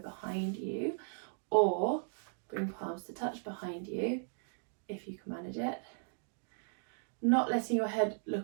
you, or bring palms to touch behind you, if you can manage it. Not letting your head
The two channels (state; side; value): silent; left; digital silence